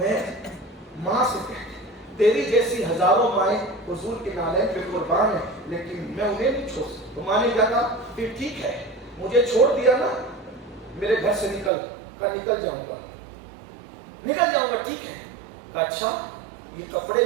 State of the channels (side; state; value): left; drops out; at 11.7 s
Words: ماں سے کہتے تیری جیسی ہزاروں مائیں حضور کے نالین پہ قربان ہیں، لیکن میں انہیں نہیں چھوڑ سکتا۔ تو ماں نے کہا پھر ٹھیک ہے، مجھے چھوڑ دیا نا، میرے گھر سے نکل جاؤں گا، ٹھیک ہے؟ اچھا یہ کپڑے